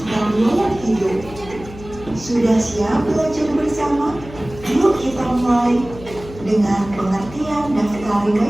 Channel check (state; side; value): noise; left; hum, 16 dB below the sound